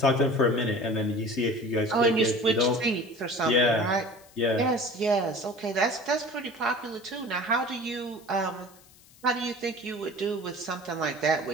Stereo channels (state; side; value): noise; left; hiss, 26 dB below the sound